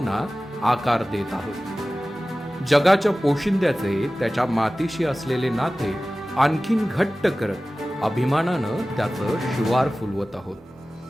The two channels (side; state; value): both; normal; correlation 0.96